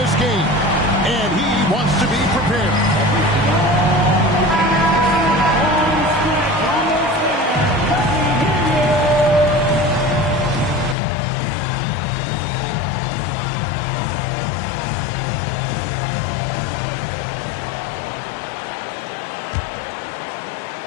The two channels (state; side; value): drops out; right; at 11.0 s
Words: game. And he wants to be prepared.